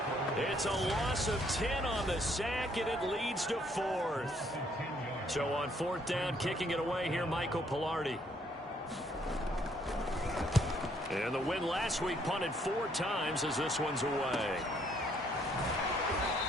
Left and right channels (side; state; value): both; normal; correlation 0.68